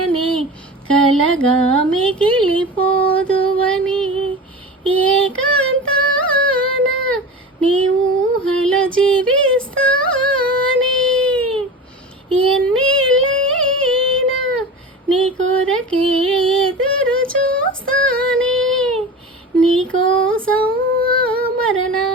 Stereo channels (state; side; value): normal; both; correlation 0.31